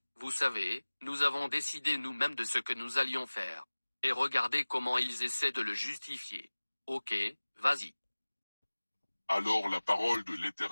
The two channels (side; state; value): both; inverted; correlation -1.00